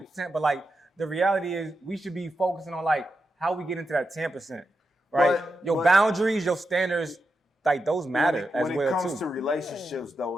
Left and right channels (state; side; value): normal; both; correlation 0.87